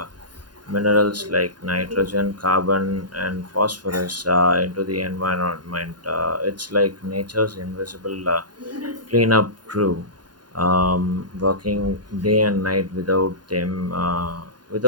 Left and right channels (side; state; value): left; late; 0.70 ms